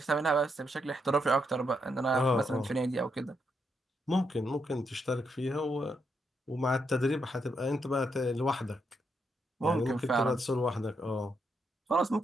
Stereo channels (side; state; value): both; normal; correlation 0.79